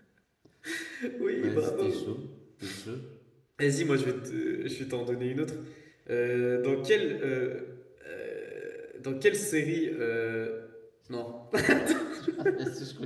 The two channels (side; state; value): both; identical; correlation 1.00